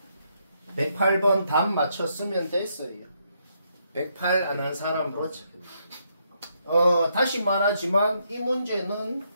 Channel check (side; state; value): both; inverted; correlation -0.76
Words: 108번 답 맞췄으면 됐어요. 108 안 한 사람 그렇죠. 다시 말하지만 이 문제는